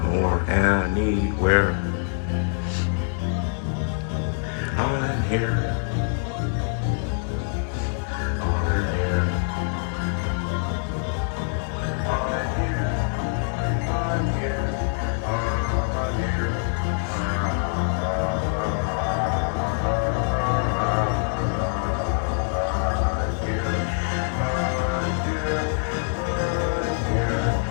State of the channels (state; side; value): silent; right; 62 dB below the other